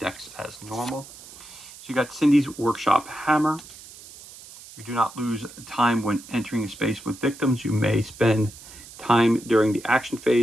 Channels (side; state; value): right; noise; hiss, 18 dB below the sound